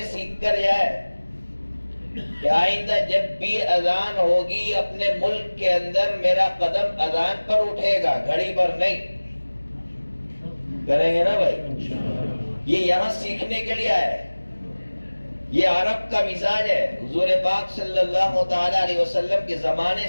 سیکھ کر جائے کہ آئندہ جب بھی اذان ہوگی اپنے ملک کے اندر میرا قدم اذان پر اٹھے گا، گھڑی پر نہیں۔ کریں گے نا بھائی؟ یہ یہاں سیکھنے کے لیے آئے۔ یہ عرب کا مزاج ہے۔ حضور پاک صلی اللہ تعالی علیہ وسلم کے زمانے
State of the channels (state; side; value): inverted; both; correlation -1.00